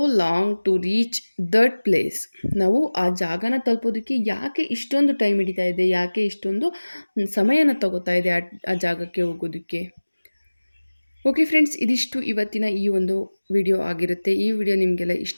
long to reach that place? ನಾವು ಆ ಜಾಗನ ತಲುಪೋದಕ್ಕೆ ಯಾಕೆ ಇಷ್ಟೊಂದು ಟೈಮ್ ಹಿಡಿತಾ ಇದೆ? ಯಾಕೆ ಇಷ್ಟೊಂದು ಸಮಯನ ತಗೋತಾ ಇದೆ ಆ ಜಾಗಕ್ಕೆ ಹೋಗೋದಕ್ಕೆ? ಓಕೆ ಫ್ರೆಂಡ್ಸ್, ಇದಿಷ್ಟು ಇವತ್ತಿನ ಈ ಒಂದು ವಿಡಿಯೋ ಆಗಿರುತ್ತೆ. ಈ ವಿಡಿಯೋ ನಿಮಗೆಲ್ಲ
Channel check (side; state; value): both; inverted; correlation -1.00